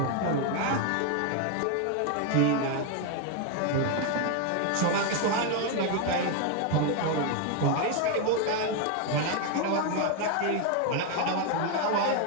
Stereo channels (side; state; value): both; different; correlation 0.01